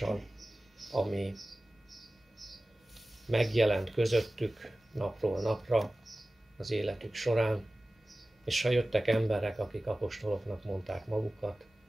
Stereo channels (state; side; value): normal; both; correlation 0.96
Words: ami megjelent közöttük napról napra az életük során, és ha jöttek emberek, akik apostoloknak mondták magukat,